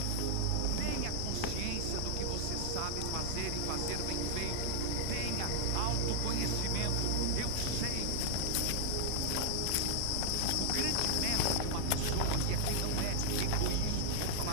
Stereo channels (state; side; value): different; both; correlation 0.00